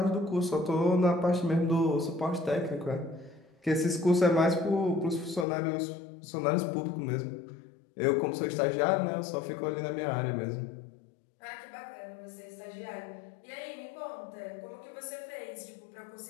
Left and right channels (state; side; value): drops out; right; at 5.5 s